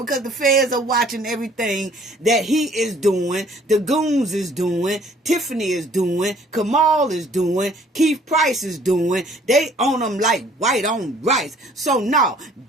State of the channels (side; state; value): both; normal; correlation 0.57